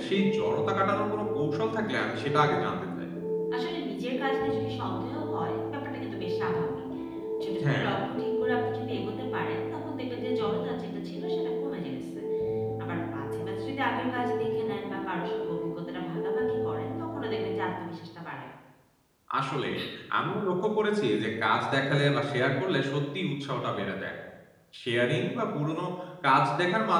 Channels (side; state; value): both; identical; correlation 1.00